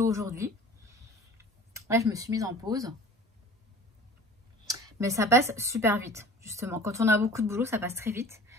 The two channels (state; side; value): normal; both; correlation 0.44